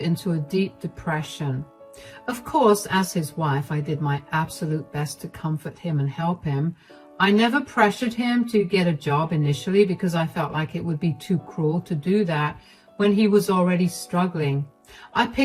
a deep depression. Of course, as his wife, I did my absolute best to comfort him and help him. I never pressured him to get a job initially because I felt like it would be too cruel to do that when he was already struggling. I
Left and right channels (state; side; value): identical; both; correlation 1.00